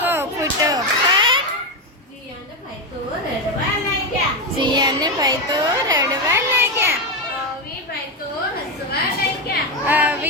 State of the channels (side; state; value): both; normal; correlation 0.10